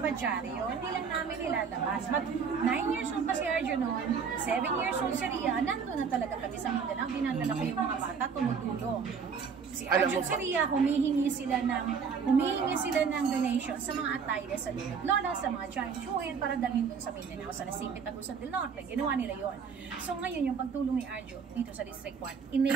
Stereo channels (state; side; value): quieter; left; 6.1 dB